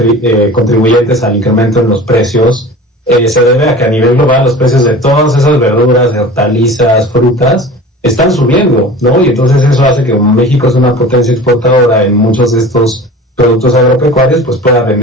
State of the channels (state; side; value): normal; both; correlation 0.39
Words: al incremento en los precios, se debe a que a nivel global los precios de todas esas verduras, hortalizas, frutas, están subiendo, ¿no? Y entonces eso hace que como México es una potencia exportadora en muchos de estos productos agropecuarios, pues pueda